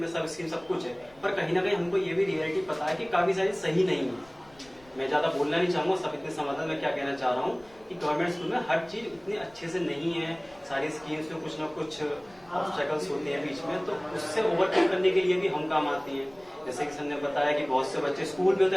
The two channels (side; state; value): left; noise; rumble, 28 dB below the sound